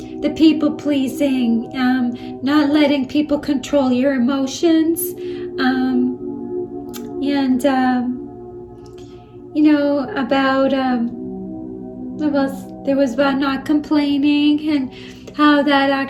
people pleasing, not letting people control your emotions, and about there was about not complaining, and how that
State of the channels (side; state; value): both; identical; correlation 1.00